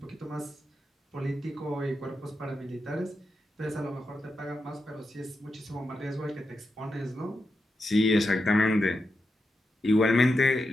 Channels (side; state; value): both; normal; correlation 0.87